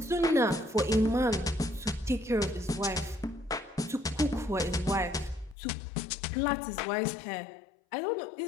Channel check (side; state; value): right; drops out; at 5.6 s